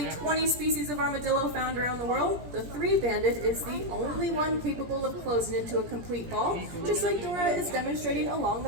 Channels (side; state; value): left; late; 17 ms